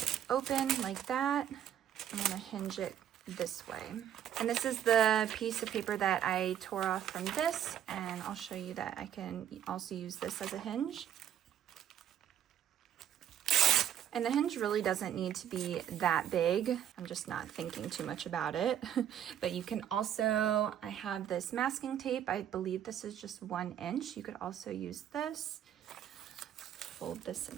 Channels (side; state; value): left; quieter; 10.3 dB